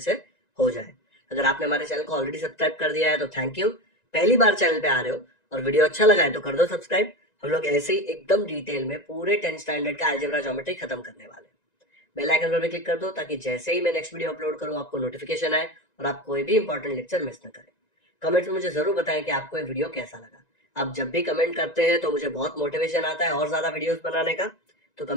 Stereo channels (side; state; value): right; late; 1.9 ms